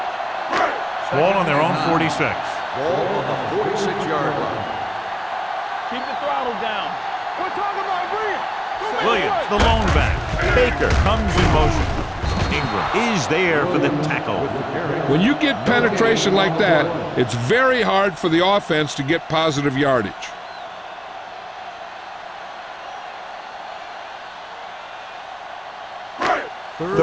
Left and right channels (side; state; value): both; identical; correlation 1.00